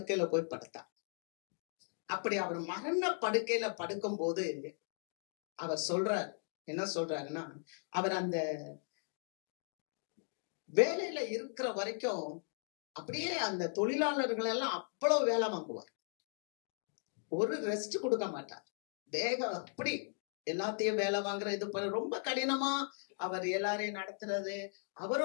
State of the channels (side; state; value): right; silent; 53 dB below the other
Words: போய் படுத்தார். அப்படி அவர் மரண படுக்கையில படுக்கும் போது அவர் சொல்றார், என்ன சொல்றாருன்னா, அவர் அந்த வேலையில இருக்கிற வரைக்கும் அப்படியே அந்த தொழிலாளர்கள் எல்லாம் அவ்வளவு வேலை வாங்குவார். ஒரு ரெஸ்ட் கொடுக்க மாட்டார். வேகம் அப்படி எல்லாத்தையும் வேலை வாங்குற இது ரொம்ப கடினமா அவர் எல்லாரையும் நடத்துறது.